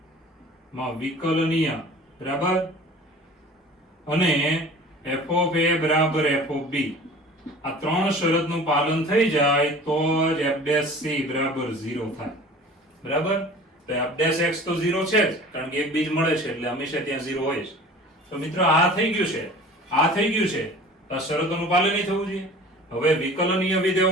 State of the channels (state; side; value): normal; both; correlation 0.43